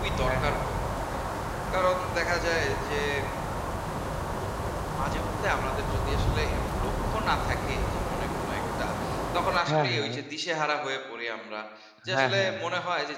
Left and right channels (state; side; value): identical; both; correlation 1.00